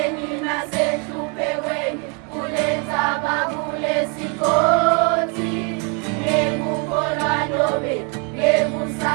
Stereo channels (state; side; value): quieter; left; 34.2 dB